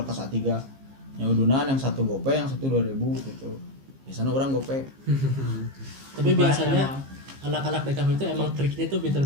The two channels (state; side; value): late; left; 15 ms